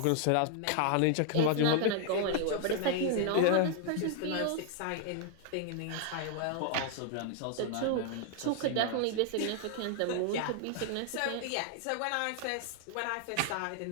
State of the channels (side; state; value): both; different; correlation 0.00